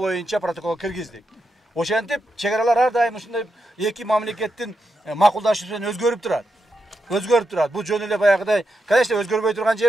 протоколго киргиздик. Ошентип чегаралар ар дайым ушундай эки мамлекеттин макулдашуусу менен өзгөрүп турат. Бул жөн эле баягыдай, конечно, өзгөрбөй турган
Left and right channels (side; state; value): both; normal; correlation 0.85